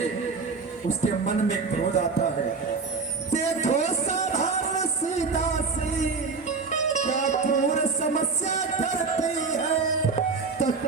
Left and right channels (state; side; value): quieter; left; 4.6 dB